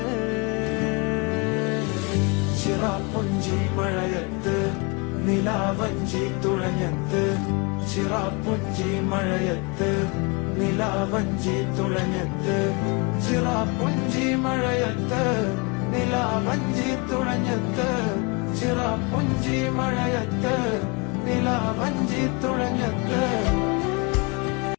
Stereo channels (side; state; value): right; quieter; 29.7 dB